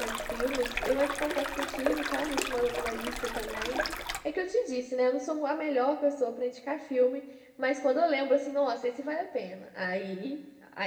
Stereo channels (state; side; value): identical; both; correlation 1.00